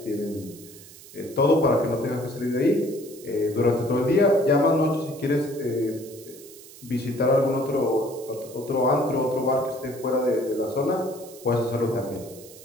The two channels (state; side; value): noise; right; hiss, 19 dB below the sound